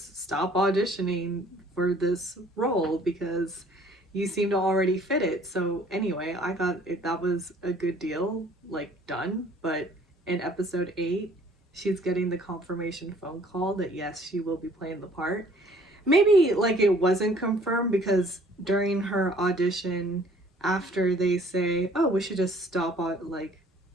stop auditioning for this role because you seem to already fit it. So anyway, I thought that was a good deal, like, done. But in episode 8, she's getting the confirmation phone call that yes, she will be playing the part. Maybe, like, it wasn't confirmed because during her audition, after they say, oh, we should just stop like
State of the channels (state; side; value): normal; both; correlation 0.56